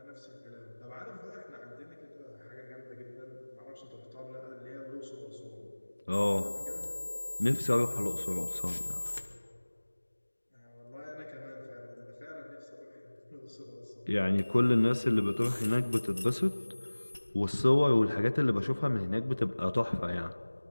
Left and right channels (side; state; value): both; inverted; correlation -1.00